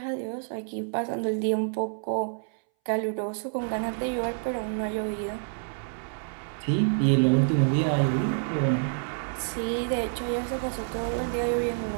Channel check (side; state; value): left; silent; 59 dB below the other